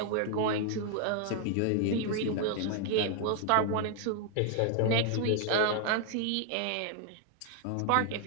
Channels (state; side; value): different; both; correlation 0.00